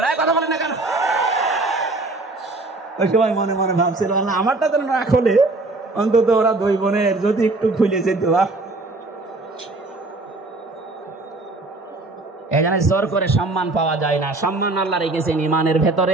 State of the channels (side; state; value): left; quieter; 3.1 dB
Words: কথা বলেন না কেন? ওই সময় মনে মনে ভাবছিল আল্লাহ আমারটা তো না খোলে, অন্তত ওরা 2 বোনের যদি একটু খুলে যেত। এখানে জোর করে সম্মান পাওয়া যায় না। সম্মান আল্লাহ রেখেছেন ইমানের